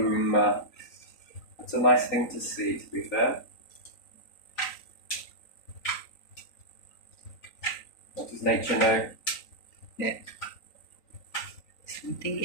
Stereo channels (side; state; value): right; late; 3.9 ms